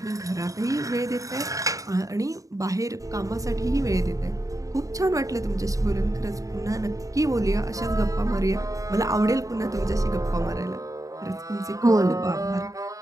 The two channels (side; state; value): left; late; 0.16 ms